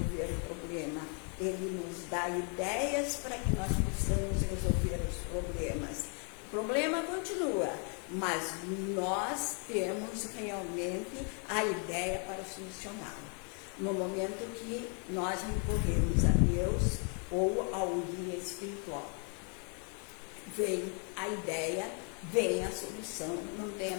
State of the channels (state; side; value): quieter; right; 38.8 dB